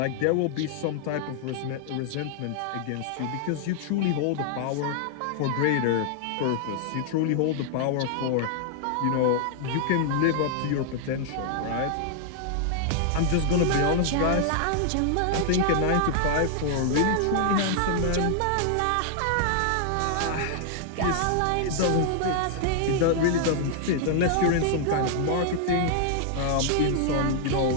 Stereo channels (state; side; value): different; both; correlation -0.01